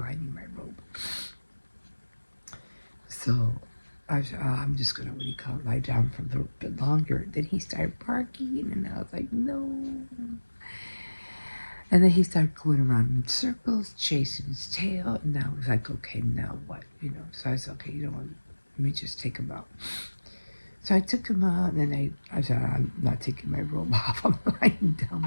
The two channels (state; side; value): inverted; both; correlation -1.00